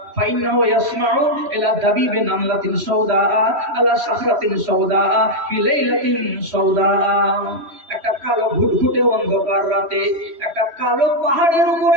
ফাইন্নাহু ইয়াসমাউ ইলা দাবিবি নামলাতিন সাউদা আলা সাখরাতিন সাউদা ফি লাইলাতিন সাউদা। একটা কালো ঘুটঘুটে অন্ধকার রাতে, একটা কালো পাহাড়ের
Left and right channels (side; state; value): left; late; 3.1 ms